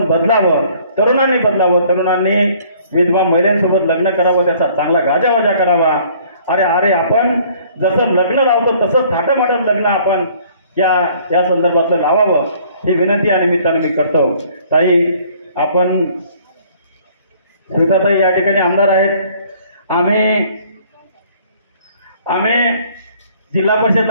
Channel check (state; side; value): inverted; both; correlation -0.58